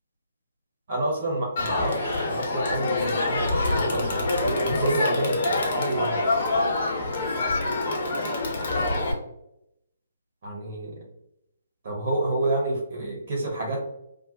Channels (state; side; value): inverted; both; correlation -0.70